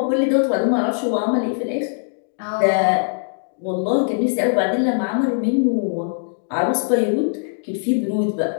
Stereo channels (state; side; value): silent; right; digital silence